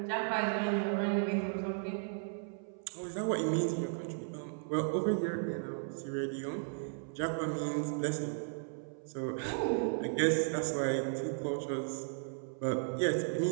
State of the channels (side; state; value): left; silent; 54 dB below the other